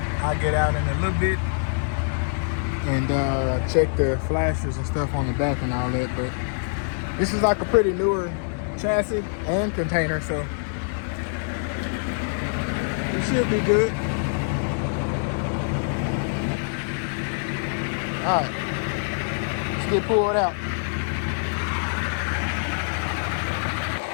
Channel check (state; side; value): silent; right; digital silence